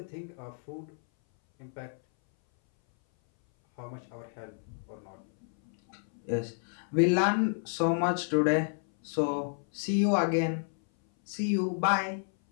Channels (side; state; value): right; silent; 58 dB below the other